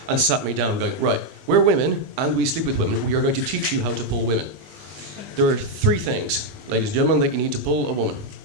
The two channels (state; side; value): late; left; 20 ms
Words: and sat me down going, right, we're women and we sleep with women. We are going to teach you how to pull women. There are 3 things, ladies and gentlemen, that you need to pull a woman.